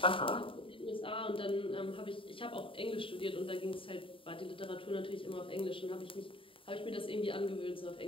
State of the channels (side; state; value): right; late; 0.25 ms